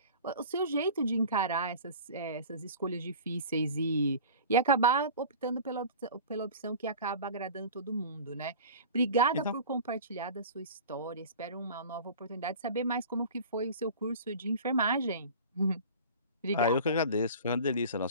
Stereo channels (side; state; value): both; inverted; correlation -0.38